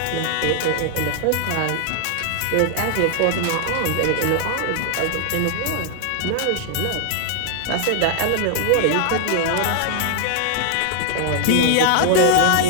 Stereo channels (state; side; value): different; both; correlation 0.00